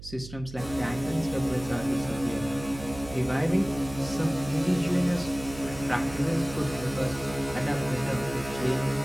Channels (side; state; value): right; noise; hum, 14 dB below the sound